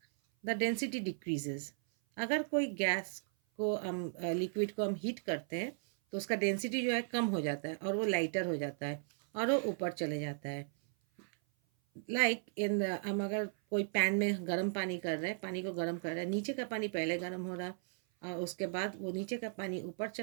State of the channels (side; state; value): left; silent; 54 dB below the other